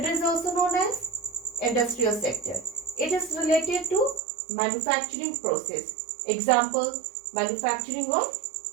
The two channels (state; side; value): drops out; left; at 4.2 s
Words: is also known as industrial sector. It is related to manufacturing process. Example, manufacturing of